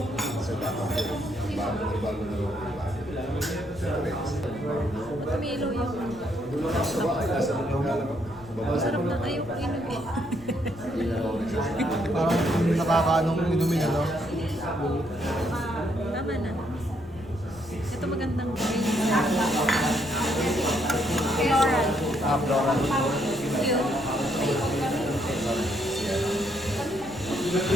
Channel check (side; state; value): left; noise; rumble, 20 dB below the sound